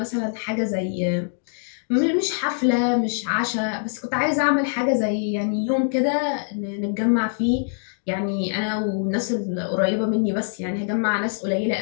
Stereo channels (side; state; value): right; silent; digital silence